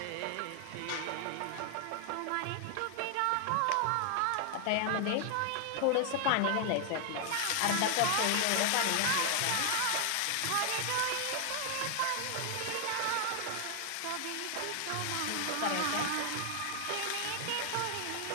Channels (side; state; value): both; different; correlation 0.00